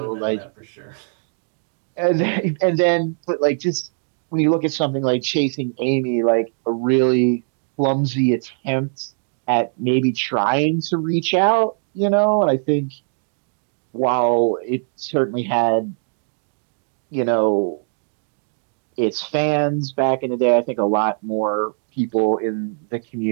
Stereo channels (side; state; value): left; silent; 65 dB below the other